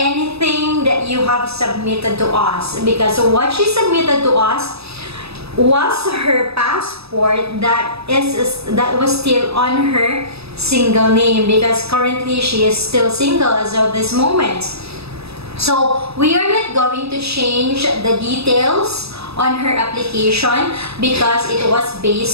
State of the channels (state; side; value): late; left; 0.78 ms